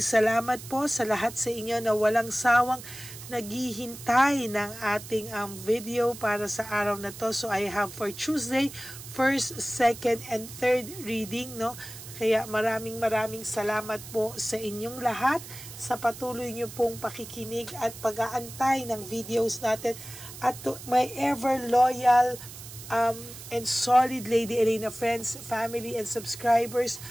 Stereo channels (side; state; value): right; noise; hiss, 14 dB below the sound